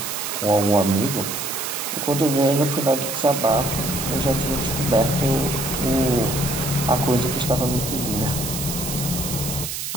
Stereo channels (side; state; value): right; noise; hiss, 5 dB below the sound